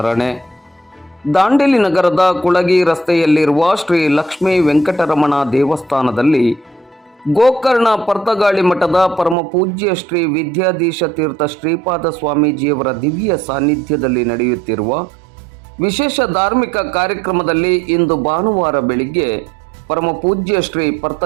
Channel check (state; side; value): drops out; left; at 9.3 s